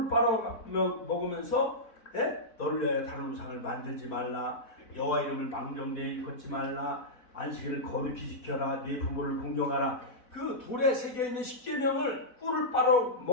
빨아먹으면서 너를 위하여 다른 우상을 만들지 말라. 여호와 이름을 망령되이 걷지 말라. 안식일을 거룩히 지켜라. 네 부모를 공경하라. 그 돌에 새겨있는 10계명을 꿀을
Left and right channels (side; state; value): right; late; 4.1 ms